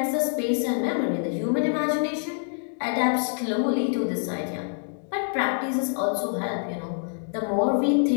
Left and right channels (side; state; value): right; silent; digital silence